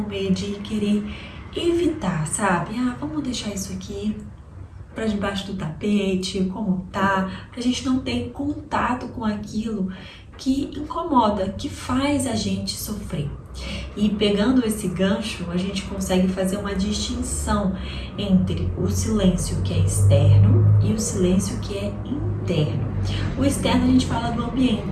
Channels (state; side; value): identical; both; correlation 1.00